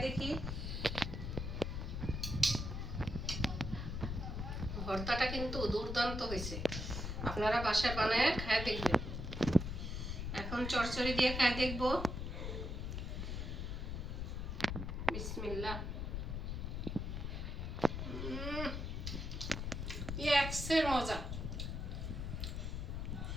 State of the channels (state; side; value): noise; left; rumble, 3 dB below the sound